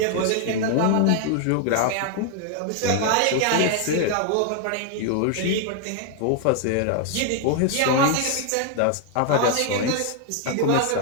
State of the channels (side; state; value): both; different; correlation 0.00